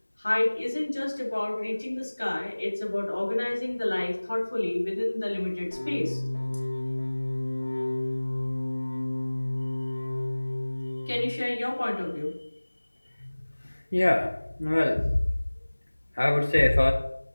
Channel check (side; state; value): both; inverted; correlation -1.00